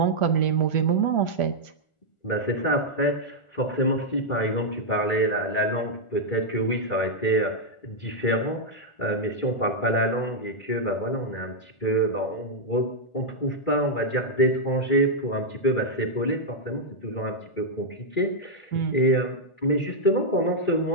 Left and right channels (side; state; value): right; late; 1.4 ms